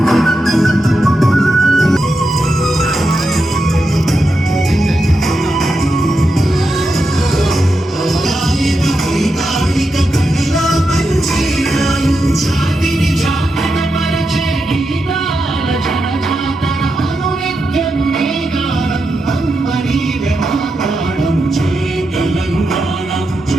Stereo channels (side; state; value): both; normal; correlation 0.87